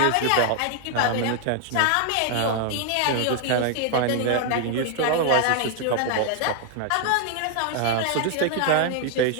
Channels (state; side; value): different; both; correlation 0.00